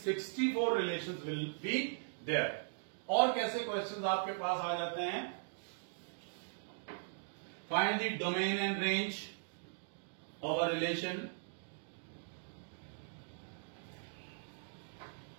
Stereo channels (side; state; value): left; silent; digital silence